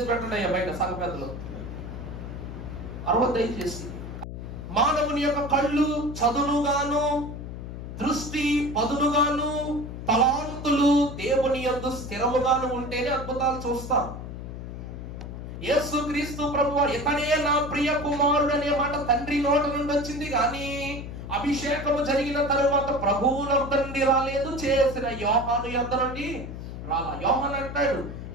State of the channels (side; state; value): left; noise; hum, 9 dB below the sound